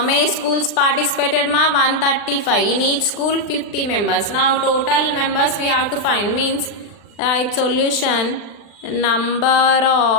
many schools participated ma? 135. In each school 50 members. Now total members we have to find. Means right solution, number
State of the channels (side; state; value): right; late; 40 ms